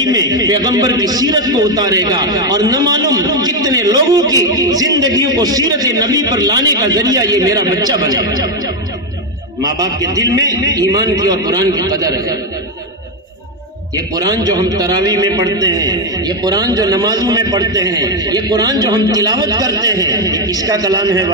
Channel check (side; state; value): both; normal; correlation 0.05